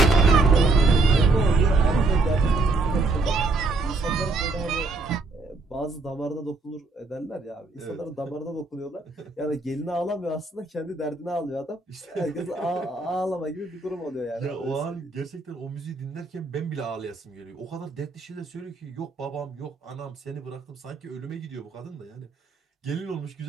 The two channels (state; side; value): quieter; left; 3.6 dB